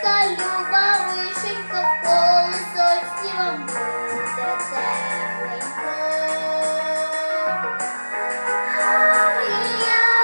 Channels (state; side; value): inverted; both; correlation -1.00